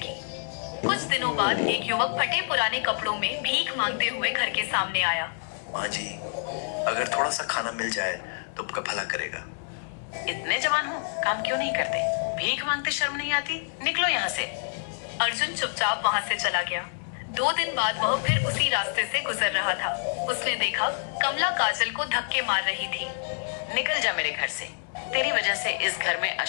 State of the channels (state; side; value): silent; right; digital silence